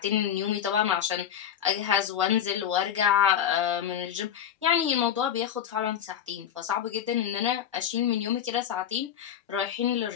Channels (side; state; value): right; quieter; 9.4 dB